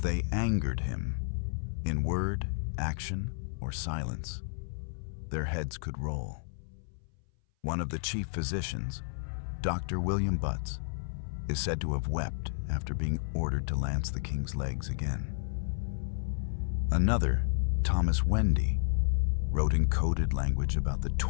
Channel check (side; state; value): right; silent; 57 dB below the other